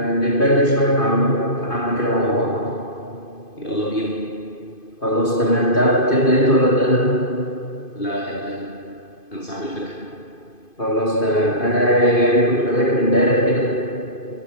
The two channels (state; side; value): late; right; 2.5 ms